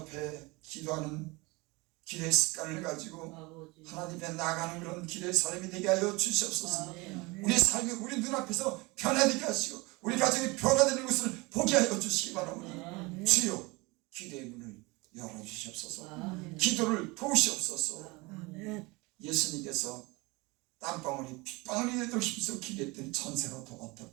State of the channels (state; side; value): quieter; left; 24.8 dB